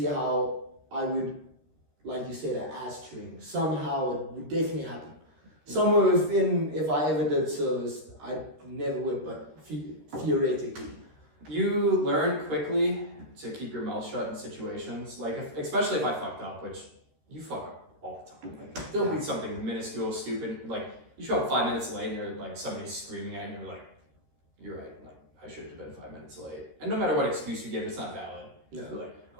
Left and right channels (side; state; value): left; late; 13 ms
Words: how I would, like you said, an ass chewing. Somehow it would definitely happen. Somewhere within, if I ever did service, I never would, but theoretically. You learn quickly to keep your mouth shut in situations, like especially if I fucked up, which you fuck up all the time. Like, there'll be something minuscule, stupid, like you show up 5 minutes late and you're like somebody's screaming at you and you're like, you're right, like I should have been 5 minutes late. And no matter what excuse you give, it's not valid. No. You're like,